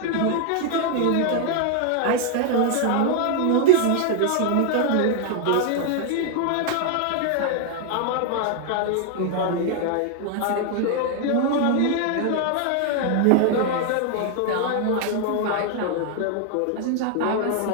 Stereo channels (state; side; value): different; both; correlation 0.00